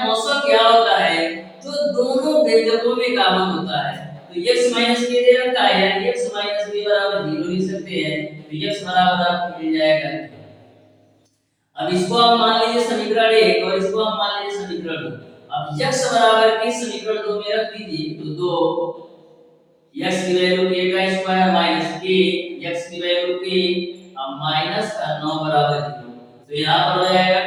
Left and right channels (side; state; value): both; identical; correlation 1.00